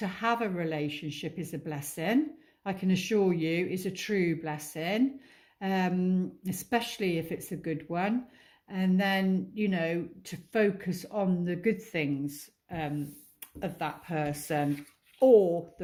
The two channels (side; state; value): both; identical; correlation 1.00